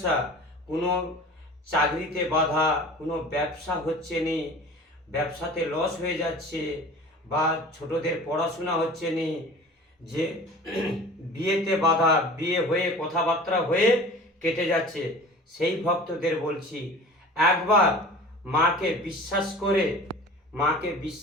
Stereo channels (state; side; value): normal; both; correlation 0.41